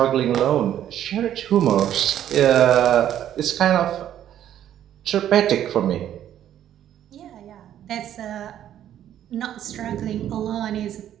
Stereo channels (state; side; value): quieter; left; 11.0 dB